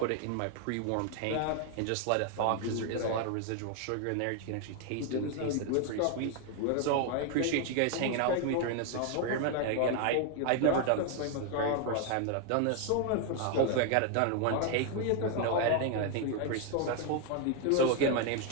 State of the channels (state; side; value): different; both; correlation 0.01